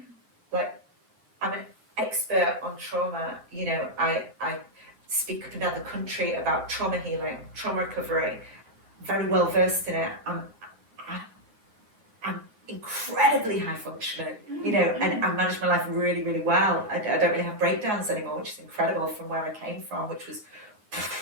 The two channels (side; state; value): left; late; 9.8 ms